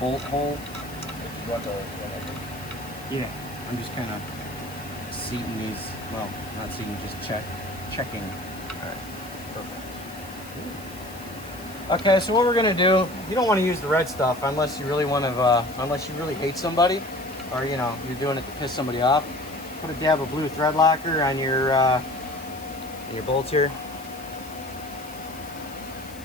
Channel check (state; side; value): noise; left; hiss, 18 dB below the sound